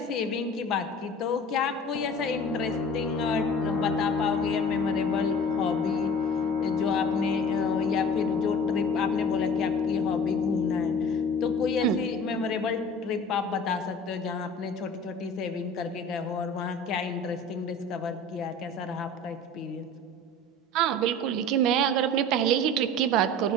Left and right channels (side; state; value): both; normal; correlation 0.41